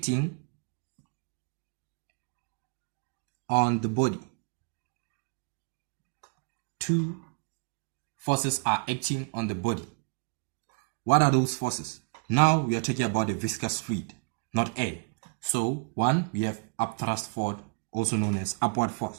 on the body. Two forces are acting on the body. What are those forces? Now we are talking about the viscous fluid, not air. So one, we have upthrust force, also known as upward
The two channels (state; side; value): quieter; left; 36.1 dB